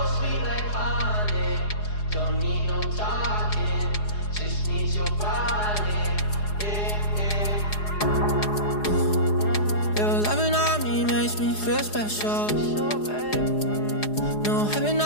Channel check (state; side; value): late; right; 4.8 ms